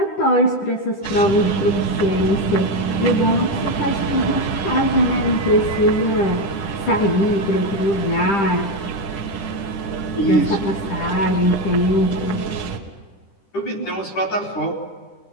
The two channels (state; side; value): late; right; 10 ms